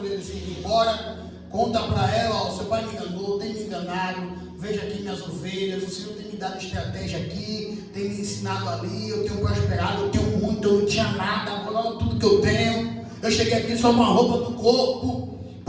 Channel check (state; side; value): identical; both; correlation 1.00